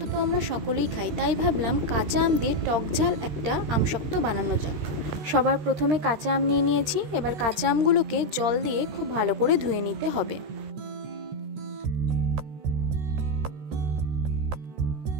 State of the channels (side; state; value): left; late; 13 ms